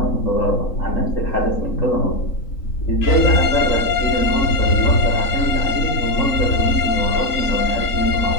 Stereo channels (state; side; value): late; right; 3.8 ms